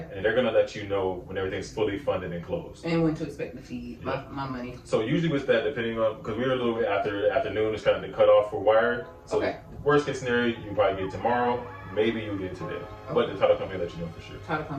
And they're going to let you know when everything's fully funded and closed. And when to expect to see my money. So usually with that, depending on, because we're a little bit after afternoon, it's kind of the cutoff for wire. So worst case scenario, you probably get tomorrow. Maybe you'll get today. But the title company will let you know for sure. Title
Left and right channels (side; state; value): both; identical; correlation 1.00